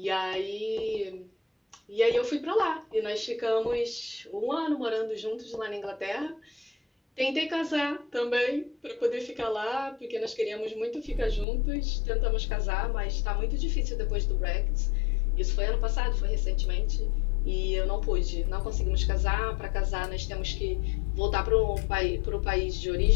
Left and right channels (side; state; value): right; drops out; at 11.5 s